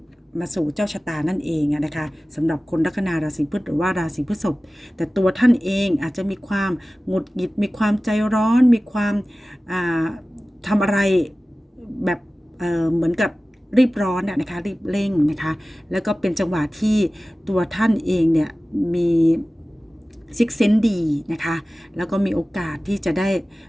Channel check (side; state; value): both; normal; correlation 0.97